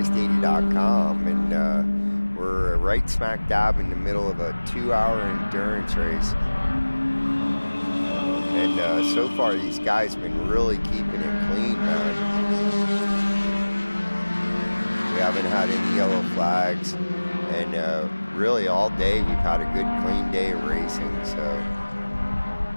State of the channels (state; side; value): inverted; both; correlation -1.00